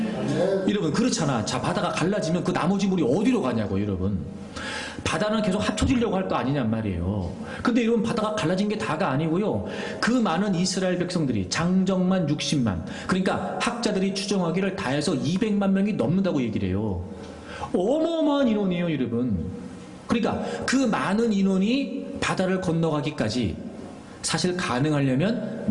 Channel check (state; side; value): identical; both; correlation 1.00